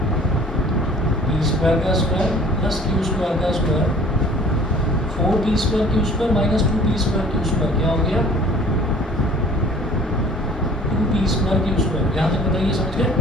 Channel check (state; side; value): normal; both; correlation 0.51